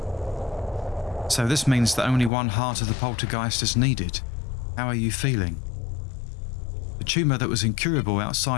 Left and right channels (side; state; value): right; drops out; at 2.3 s